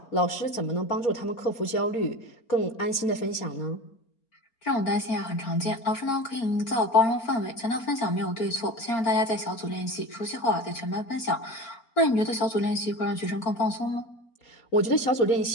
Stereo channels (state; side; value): late; right; 4.3 ms